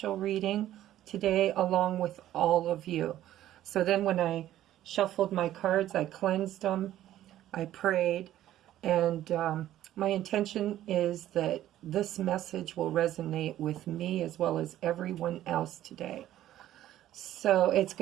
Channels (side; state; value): left; quieter; 13.0 dB